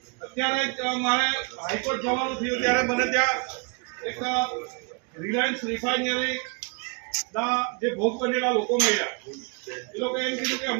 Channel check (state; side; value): quieter; left; 34.0 dB